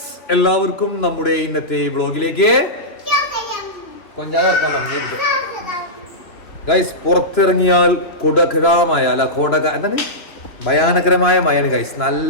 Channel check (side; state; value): right; late; 3.1 ms